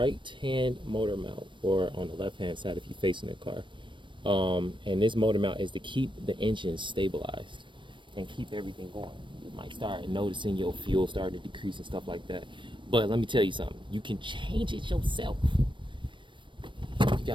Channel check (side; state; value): left; late; 0.24 ms